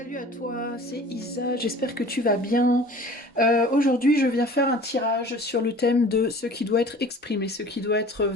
à toi, c'est Isa, j'espère que tu vas bien. Aujourd'hui, je viens faire un tirage sur le thème de ce qui doit être exprimé, ce qui doit être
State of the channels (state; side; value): normal; both; correlation 0.45